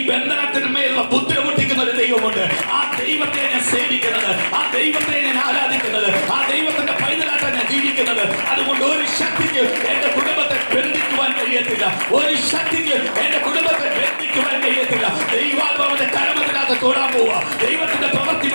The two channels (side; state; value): both; inverted; correlation -1.00